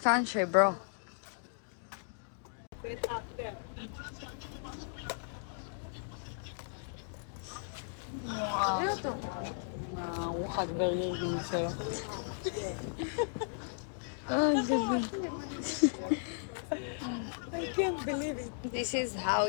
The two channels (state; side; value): silent; right; digital silence